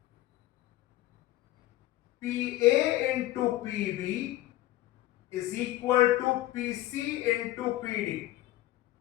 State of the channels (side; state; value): right; quieter; 15.8 dB